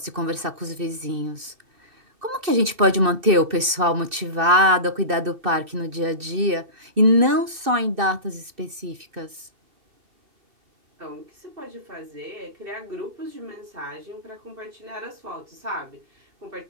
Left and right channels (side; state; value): left; late; 2.6 ms